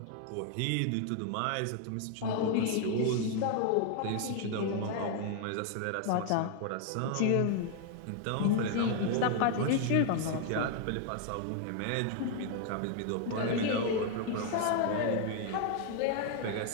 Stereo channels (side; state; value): both; different; correlation 0.00